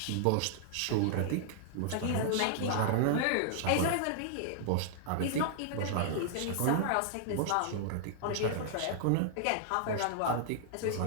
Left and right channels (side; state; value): both; different; correlation -0.01